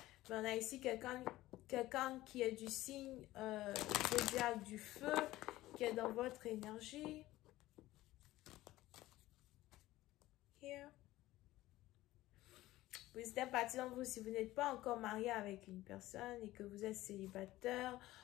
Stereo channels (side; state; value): right; quieter; 16.6 dB